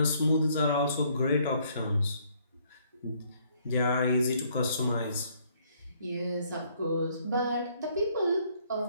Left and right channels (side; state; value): both; inverted; correlation -0.66